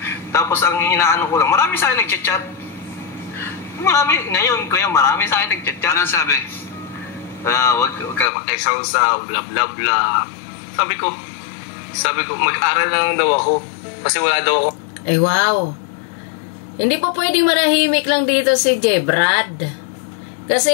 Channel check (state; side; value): drops out; right; at 8.3 s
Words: Tapos ang inaano ko lang, marami sa akin nag-chat. Ngayon, kuya, marami sa akin nag-chat. Anong sabi? Wag ka makisawsaw, bla bla bla. Sabi ko, mag-aral na lang daw ako. Kasi wala daw ako. Ay, wow. Hindi po pwedeng manahimik lang dito si J. Brad.